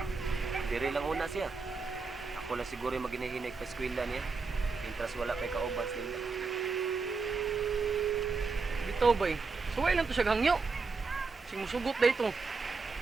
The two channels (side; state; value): left; quieter; 4.5 dB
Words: Diri lang una siya. Ako na siguro yung maginahinig pa eskwela niya. Intras wala kay kauban sila. Bitaw, bay. Suway lang to siya gangyo. Sing musugot na ito.